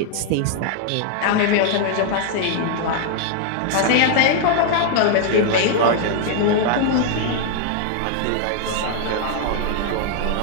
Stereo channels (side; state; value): both; different; correlation 0.00